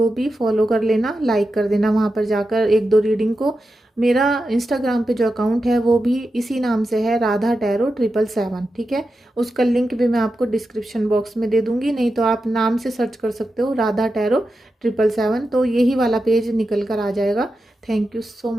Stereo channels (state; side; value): normal; both; correlation 0.90